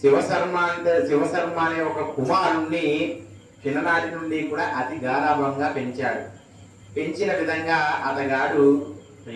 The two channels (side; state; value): both; identical; correlation 1.00